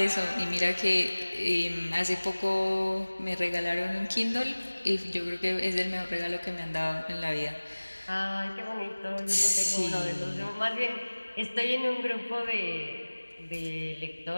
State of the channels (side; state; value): both; inverted; correlation -1.00